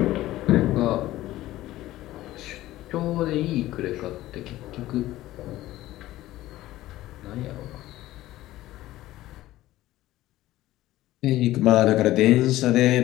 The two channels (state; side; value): quieter; right; 15.7 dB